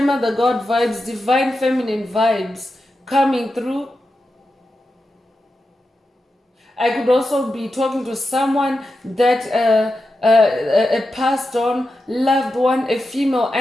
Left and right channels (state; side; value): normal; both; correlation 0.90